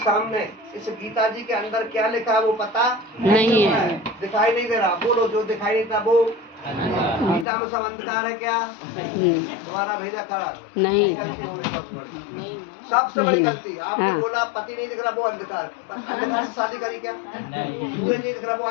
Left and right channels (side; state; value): right; drops out; at 7.5 s